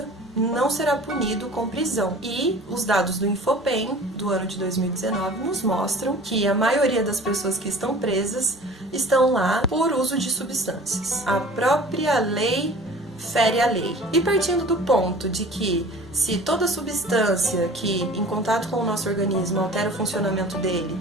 não será punido com prisão. E os dados do Infopem, do ano de 2019, nos mostram que a maioria das pessoas que estão presas estão lá por uso de substâncias. A própria lei fere a lei. E partindo do ponto de que se toda substância que em contato com o nosso organismo altera o funcionamento dele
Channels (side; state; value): both; normal; correlation 0.44